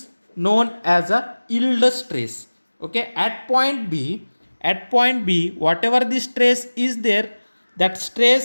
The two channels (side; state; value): both; inverted; correlation -1.00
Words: known as a yield stress. Okay, at point B, whatever the stress is there, that